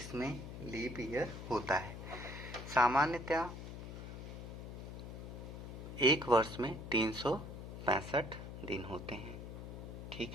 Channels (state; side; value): noise; left; hum, 9 dB below the sound